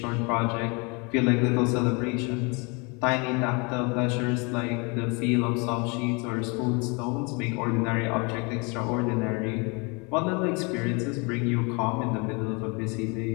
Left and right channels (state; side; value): quieter; right; 30.6 dB